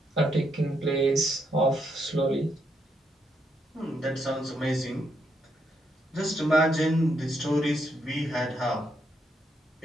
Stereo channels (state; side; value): normal; both; correlation 0.77